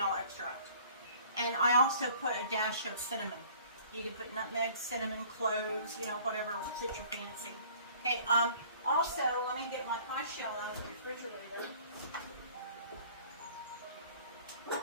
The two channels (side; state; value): both; inverted; correlation -0.52